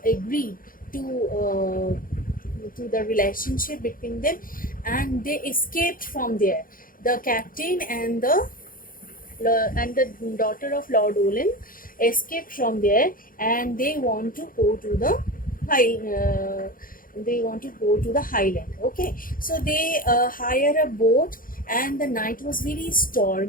agreed to the relationship between them, and they escaped from there. The captain and the daughter of Lord Ullyn escaped from there, and they want to go to the highland. Okay, so they hire a boat, and the night was very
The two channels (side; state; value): right; late; 0.41 ms